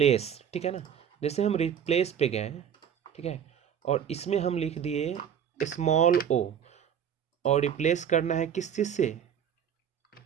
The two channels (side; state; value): left; quieter; 8.6 dB